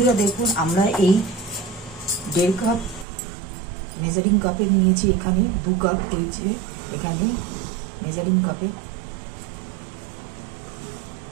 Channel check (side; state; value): left; drops out; at 3.1 s